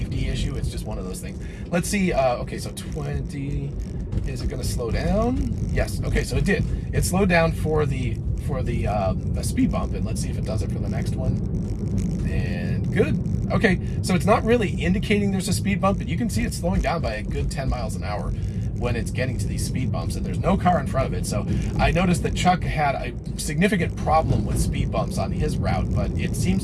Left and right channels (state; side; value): identical; both; correlation 1.00